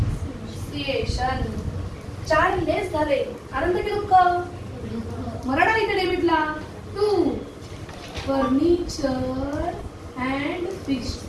4 लेस झाले, आनंद की दुःख, मराठा इथे डेबिटला 2. फर्निचर अँड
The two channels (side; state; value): both; identical; correlation 1.00